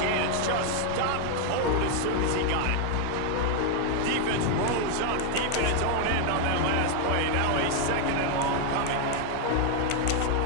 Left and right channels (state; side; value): different; both; correlation 0.00